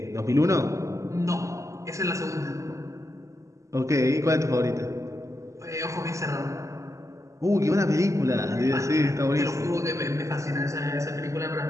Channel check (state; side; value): late; left; 0.15 ms